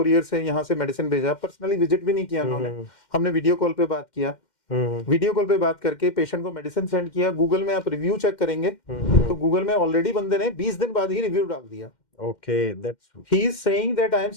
से यहाँ से मेडिसिन भेजा, पर्सनली विजिट भी नहीं किया उन्होंने, हमने वीडियो कॉल पे बात किया, वीडियो कॉल पे बाज करके पेशेंट को मेडिसिन सेंड किया। गूगल में आप रिव्यू चेक करेंगे तो गूगल में ऑलरेडी बंदे ने 20 दिन बाद ही रिव्यू डाल दिया। Okay, that's he is saying that I am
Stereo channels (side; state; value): right; late; 2.1 ms